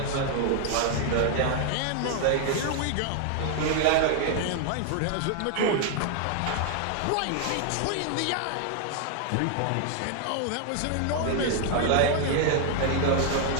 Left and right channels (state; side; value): different; both; correlation 0.00